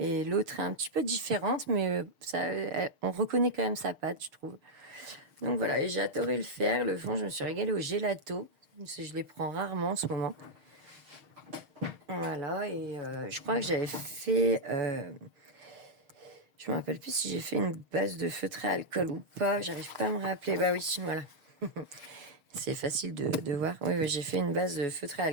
l'autre est un petit peu différente, mais on reconnaît quand même sa patte, je trouve. Donc voilà, et j'ai adoré le faire. Le fond, je me suis régalée au gelato. Je les prends rarement en ce moment. Voilà, et je crois que j'avais fait... je me rappelle plus si j'ai fait une base de feutré à alcool ou pas. J'arrive pas à me rappeler. Bah oui, voilà. C'est facile de voir. Oui, oui, j'ai fait une base de feutré à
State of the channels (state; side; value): late; left; 6.5 ms